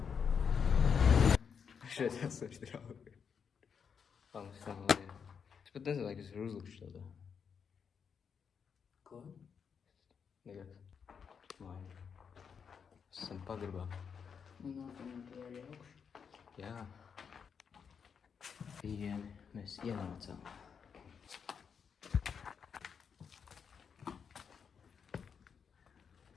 Šeit esmu draugi. Palmas tā lieta. Es pat nezinu, kas ir uzlikšu tādā. Ko? Nekas. Māja. Esam pagrabā. Un nākamā tie arī augšu. Jā. Pieejami mēs ienācām.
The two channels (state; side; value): quieter; right; 6.7 dB